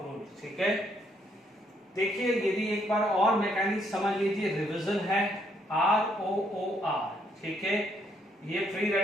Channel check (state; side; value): normal; both; correlation 0.71